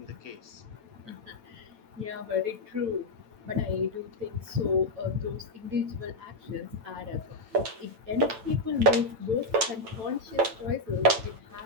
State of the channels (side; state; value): left; late; 8.9 ms